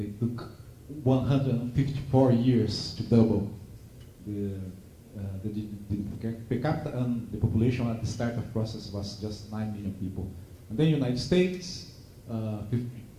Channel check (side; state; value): both; identical; correlation 1.00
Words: took 154 years to double the per capita, and the population at the start of the process was just 9 million people. And then United States,